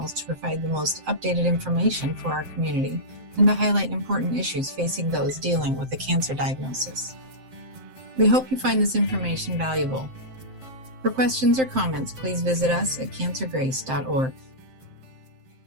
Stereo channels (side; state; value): left; late; 7.7 ms